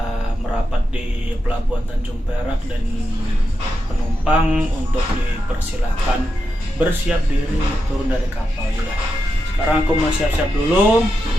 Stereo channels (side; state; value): both; normal; correlation 0.87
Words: merapat di pelabuhan Tanjung Perak dan penumpang untuk dipersilahkan bersiap diri turun dari kapal. Ya. Sekarang aku mau siap-siap dulu.